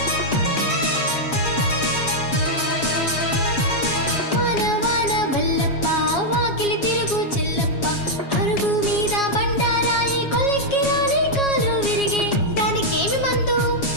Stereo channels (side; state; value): right; late; 7.3 ms